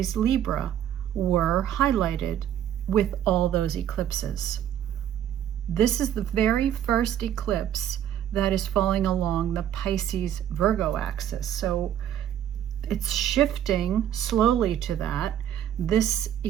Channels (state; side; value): quieter; left; 10.4 dB